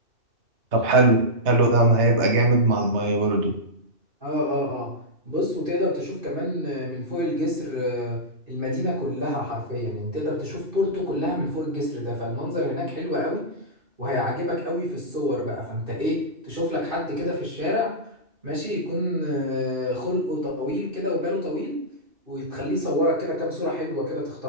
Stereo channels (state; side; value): late; left; 2.7 ms